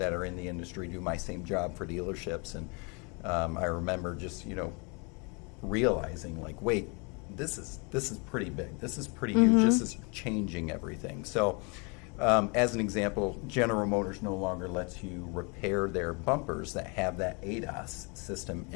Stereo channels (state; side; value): quieter; right; 32.2 dB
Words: are in the industry, do my same job for dealerships. And I remember just, realizing, like, wait, this is pretty big. This is pretty huge. This is changing everything. So as an example, General Motors no longer lets you repair their bumpers that have that ADAS system